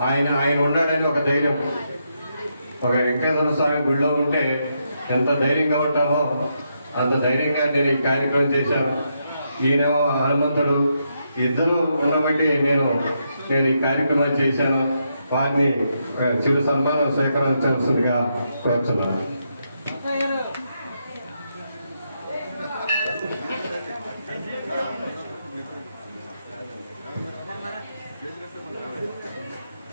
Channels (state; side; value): inverted; both; correlation -0.81